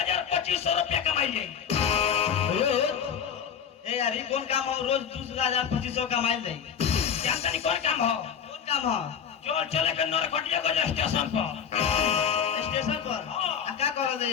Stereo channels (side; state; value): right; quieter; 7.8 dB